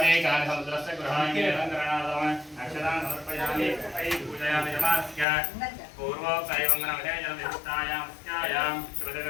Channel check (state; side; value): drops out; right; at 5.2 s